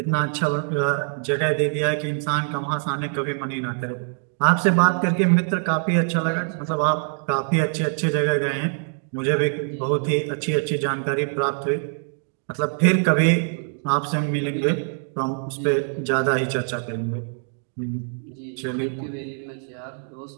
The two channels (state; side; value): silent; left; 57 dB below the other